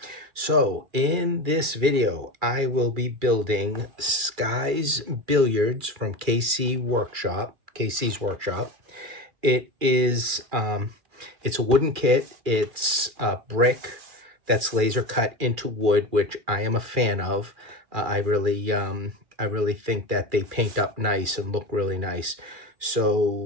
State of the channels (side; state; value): left; late; 2.3 ms